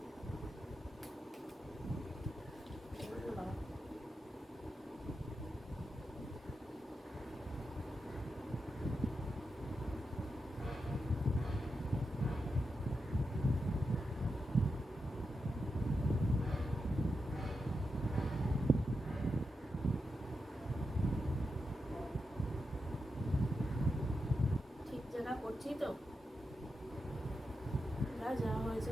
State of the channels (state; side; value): normal; both; correlation 0.87